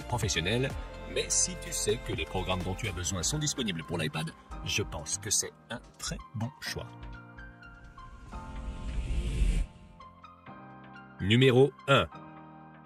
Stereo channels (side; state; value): both; identical; correlation 1.00